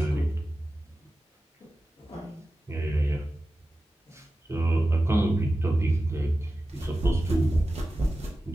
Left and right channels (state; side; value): normal; both; correlation 0.94